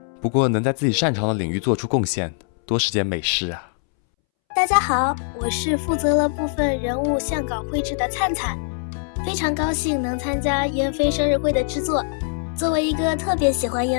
不过能在自己擅长的领域做出贡献，多是件美事啊。大家好，我是负责了部分人物相稿绘制的灿灿，非常高兴能参加燕飞生日会的制作。作为一个特别喜欢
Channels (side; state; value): right; silent; 64 dB below the other